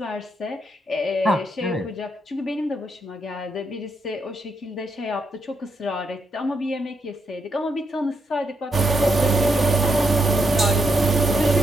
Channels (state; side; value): normal; both; correlation 0.79